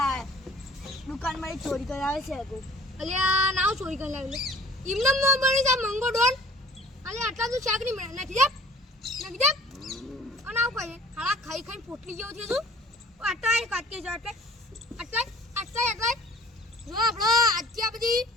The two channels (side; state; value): both; normal; correlation 0.51